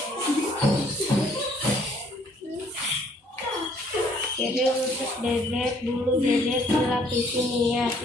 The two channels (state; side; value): normal; both; correlation 0.62